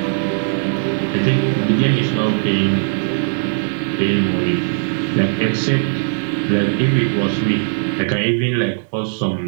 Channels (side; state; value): left; silent; digital silence